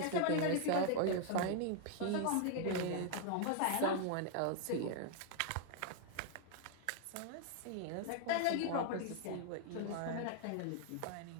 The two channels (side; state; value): both; different; correlation 0.00